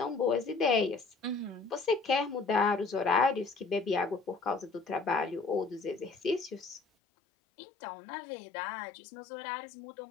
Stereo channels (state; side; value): drops out; right; at 6.8 s